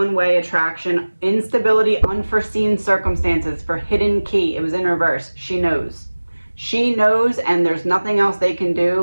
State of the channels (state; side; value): inverted; both; correlation -1.00